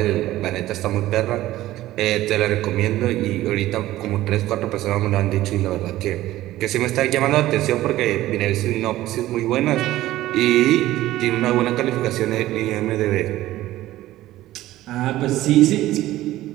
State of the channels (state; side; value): quieter; left; 15.5 dB